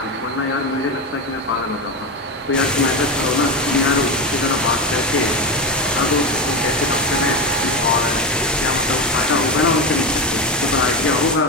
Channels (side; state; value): both; normal; correlation 0.18